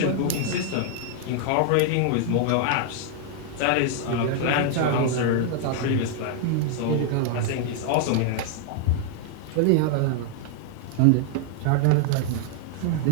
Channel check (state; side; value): different; both; correlation 0.00